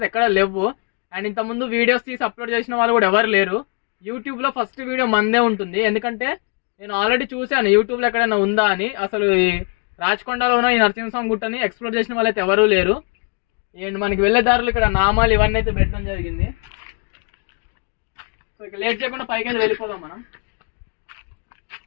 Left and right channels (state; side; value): quieter; right; 37.4 dB